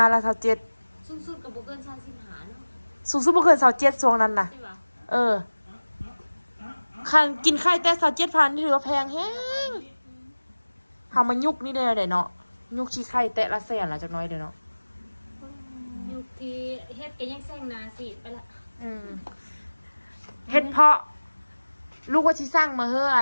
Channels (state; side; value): inverted; both; correlation -1.00